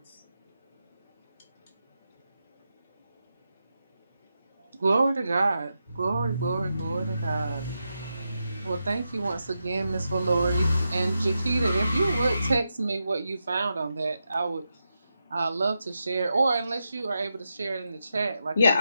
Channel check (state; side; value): inverted; both; correlation -0.87